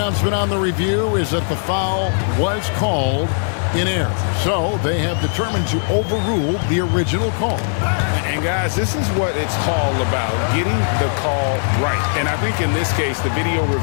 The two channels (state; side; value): silent; right; digital silence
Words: on the review is that the foul was called in error. So they have determined to overrule the original call. And guys, this is what it's all about, getting the call right. And I think in this case, the video